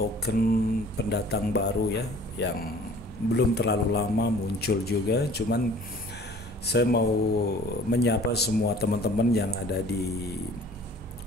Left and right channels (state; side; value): normal; both; correlation 0.50